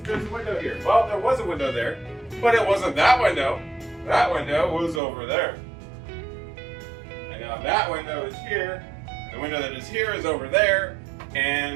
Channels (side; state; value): left; drops out; at 5.0 s